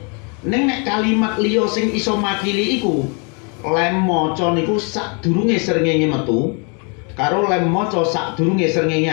Ning nek kalimat liya sing iso makili iku lem maca niku sadurunge srengenge metu karo lem maca sadurunge srengenge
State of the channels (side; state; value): right; quieter; 35.3 dB